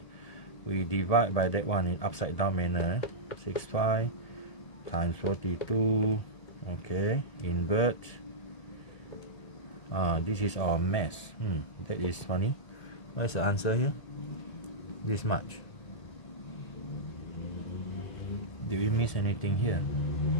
we divide by that one in upside down manner. 65 times 42, okay, invert. This is our mass. That is funny. What's the answer here? This much. Did we miss anything here?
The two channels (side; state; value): right; late; 1.7 ms